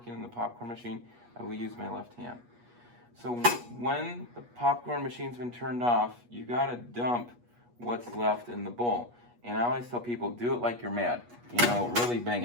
in the popcorn machine, I will use my left hand. So when the popcorn machine's been turned off, you gotta dump what's left in the bowl. And I always tell people, do it like you're mad. Really bang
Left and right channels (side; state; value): left; late; 8.3 ms